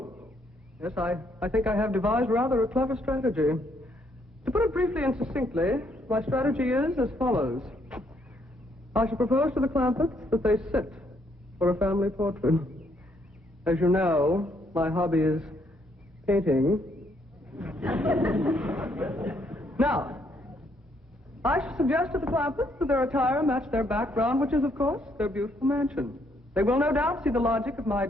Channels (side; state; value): both; normal; correlation 0.71